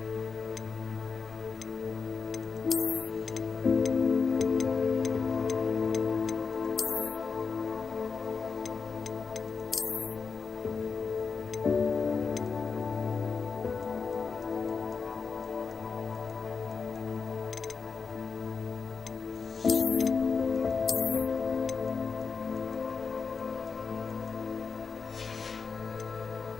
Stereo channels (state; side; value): quieter; right; 5.3 dB